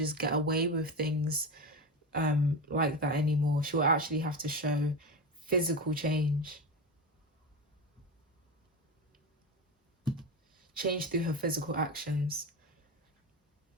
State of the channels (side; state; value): both; normal; correlation 0.21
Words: get away with things like that anymore. She'll actually have to show physical change through her physical actions.